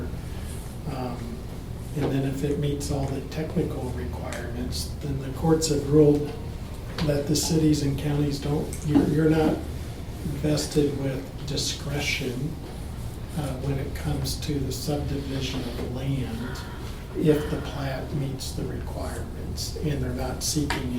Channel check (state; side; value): identical; both; correlation 1.00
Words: And then if it meets all the technical requirements, then the courts have ruled that the cities and counties don't, you're not vested with discretion when it comes to the subdivision of the land if the plat meets the requirements and they're not